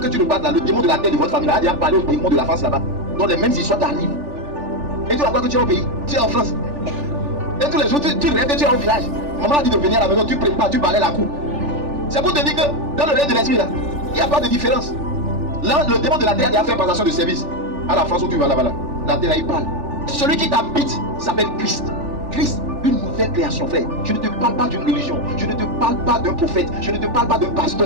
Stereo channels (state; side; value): late; left; 3.4 ms